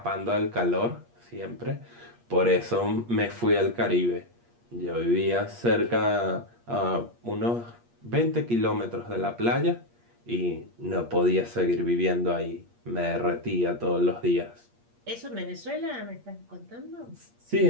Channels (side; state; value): left; late; 8.5 ms